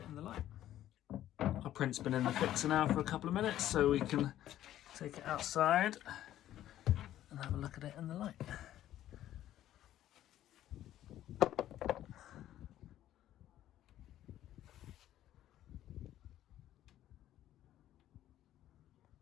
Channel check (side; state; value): right; quieter; 12.7 dB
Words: in the light. Our print's been in the fixer now for a couple of minutes, so we can take it outside and have a look at it in the light.